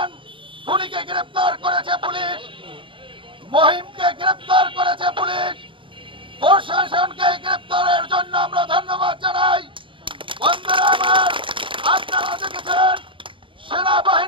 খুনিকে গ্রেপ্তার করেছে পুলিশ, মহিমকে গ্রেপ্তার করেছে পুলিশ, প্রশাসনকে গ্রেপ্তারের জন্য আমরা ধন্যবাদ জানাই। বন্ধুরা আমার, আপনারা দেখেছেন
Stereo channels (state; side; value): late; left; 0.25 ms